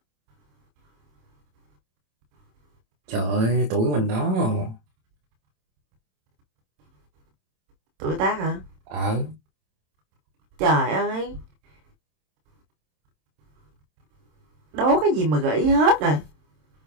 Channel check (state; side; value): late; left; 27 ms